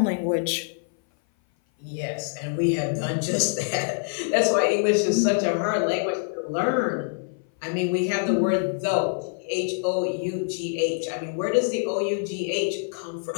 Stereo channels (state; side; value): silent; right; 57 dB below the other